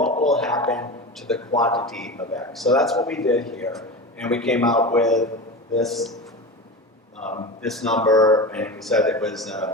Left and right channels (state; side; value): normal; both; correlation 0.27